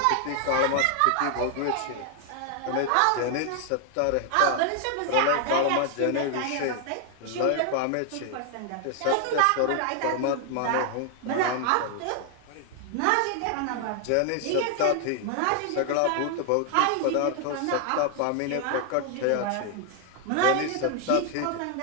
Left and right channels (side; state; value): both; different; correlation 0.00